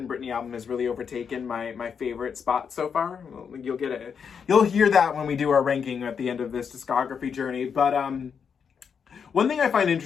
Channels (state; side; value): quieter; right; 6.7 dB